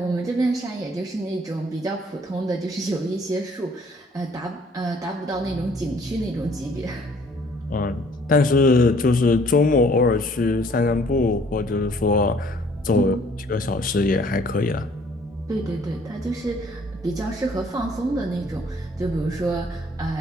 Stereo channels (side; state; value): both; normal; correlation 0.59